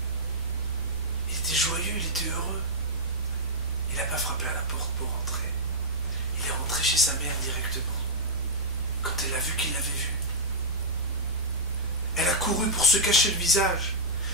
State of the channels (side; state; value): both; normal; correlation -0.09